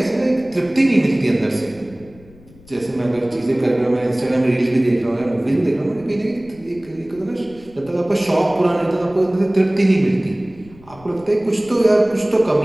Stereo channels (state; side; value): noise; left; rumble, 24 dB below the sound